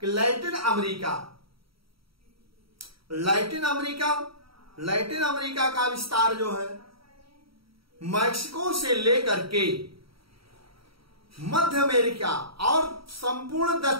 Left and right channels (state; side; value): late; left; 0.75 ms